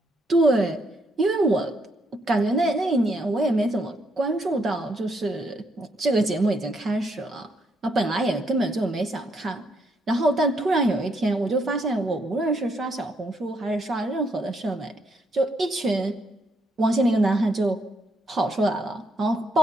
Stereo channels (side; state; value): both; normal; correlation 0.74